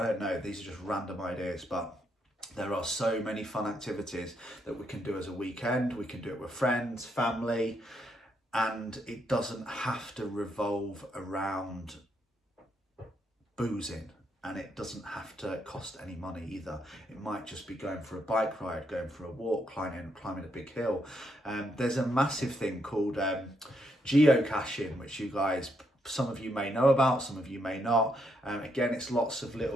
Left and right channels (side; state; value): both; normal; correlation 0.77